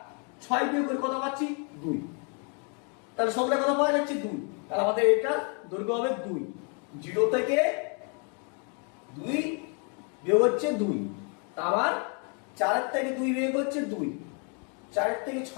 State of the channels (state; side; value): quieter; right; 38.3 dB